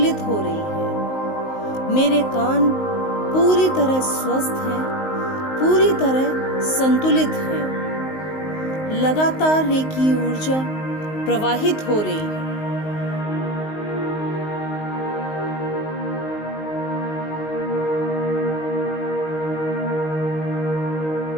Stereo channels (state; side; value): late; right; 19 ms